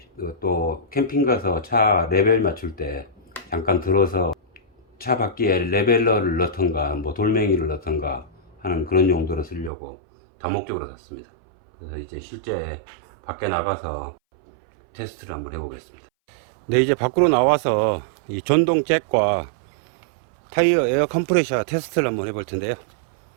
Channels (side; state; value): left; drops out; at 9.7 s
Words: 또 캠핑 가서 차 레벨 맞출 때 잠깐 들어서 차 바퀴에 레벨러를 넣던가 뭐 돌멩이를 넣던가 하는 그런 용도로 쓰려고 다목적으로 샀습니다. 그래서 이제 실제 밖에 나가서 테스트를 한번 해보겠습니다. 네, 이제 밖으로 나와서 이 전동 잭과 타이어 에어 컴프레셔 테스트를 한번 해볼 텐데요.